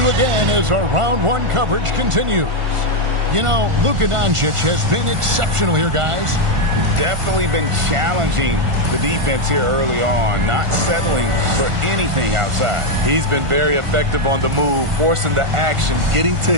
again as our round one coverage continues. You know, Luka Doncic has been exceptional here, guys. Definitely been challenging the defense here early on, not settling for anything outside. He's been very effective on the move, forcing the action, getting to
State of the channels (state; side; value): late; left; 1.5 ms